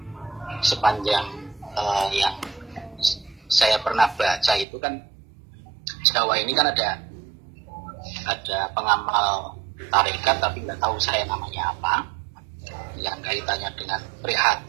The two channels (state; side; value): drops out; left; at 4.7 s